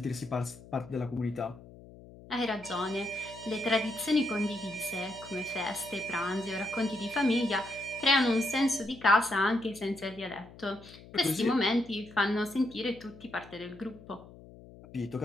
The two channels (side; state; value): left; noise; hum, 19 dB below the sound